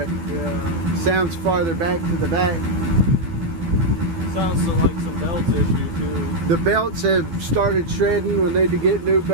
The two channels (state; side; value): late; left; 12 ms